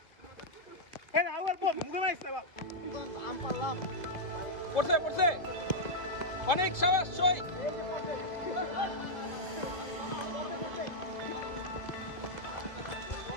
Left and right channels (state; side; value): late; right; 2.1 ms